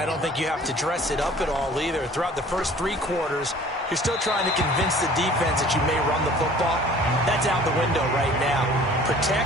don't think you have to dress it up at all either. Throughout the first 3 quarters, you're still trying to convince the defense that you may run the football. That's out the window right now.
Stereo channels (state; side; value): normal; both; correlation 0.49